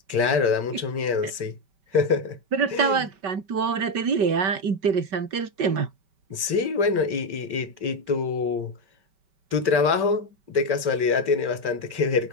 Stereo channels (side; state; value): left; late; 5.2 ms